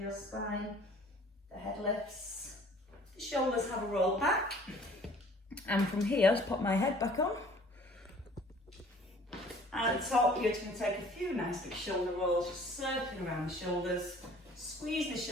spine, the head lifts, the shoulders have a roll back. And from here, just pop my head back on. And at the top, you're just going to take a few nice big shoulder rolls, just circling around the shoulders. Squeeze the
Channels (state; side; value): normal; both; correlation 0.52